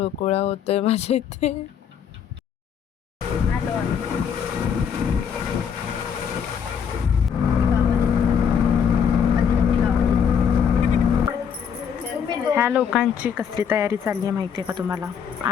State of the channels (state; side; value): quieter; right; 7.4 dB